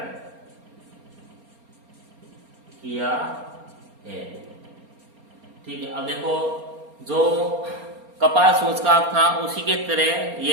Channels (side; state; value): left; late; 4.3 ms